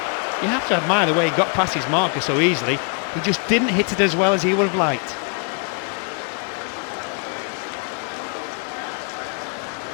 You have to admire the way he got past his marker so easily. He just didn't hit it as well as he would have liked.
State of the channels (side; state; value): right; quieter; 38.6 dB